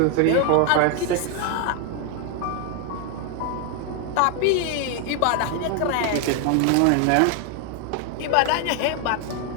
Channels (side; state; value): both; different; correlation 0.01